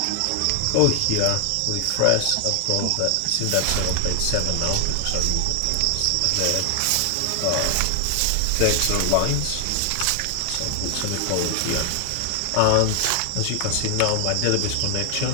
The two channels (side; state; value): both; different; correlation 0.00